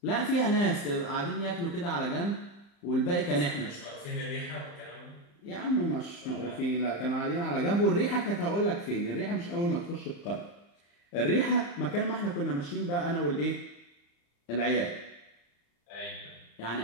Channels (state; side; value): late; right; 35 ms